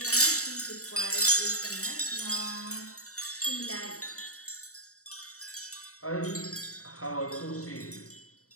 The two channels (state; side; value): late; right; 0.65 ms